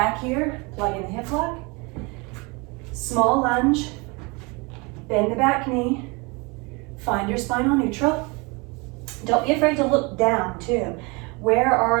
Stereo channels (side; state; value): left; quieter; 28.2 dB